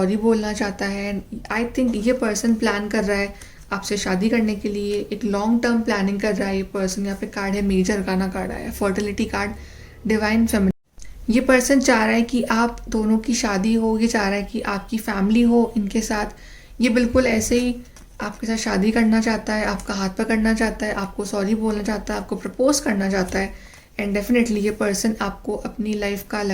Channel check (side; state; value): both; identical; correlation 1.00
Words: बोलना चाहता है। आई थिंक ये पर्सन प्लान कर रहा है आपसे शादी करने के लिए, एक लॉन्ग टर्म प्लानिंग कर रहा है ये पर्सन। यहाँ पे कार्ड है मेजर अरकाना कार्ड आया है, फर्टिलिटी कार्ड, डिवाइन फेमिनिन। ये पर्सन चाह रहा है कि आप दोनों की शादी हो, ये चाह रहा है कि आपकी फैमिली हो इनके साथ। ये बिल्कुल ऐसे ही आपके साथ शादी करना चाहता है, आपका हाथ पकड़ना चाहता है, आपको सॉरी बोलना चाहता है, आपको प्रपोज करना चाहता है। एंड डेफिनेटली ये पर्सन आपको अपनी लाइफ का